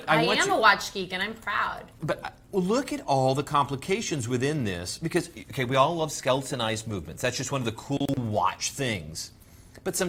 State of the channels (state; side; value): identical; both; correlation 1.00